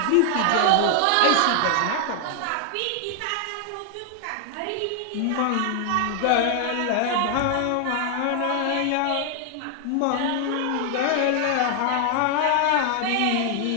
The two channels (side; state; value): both; different; correlation 0.00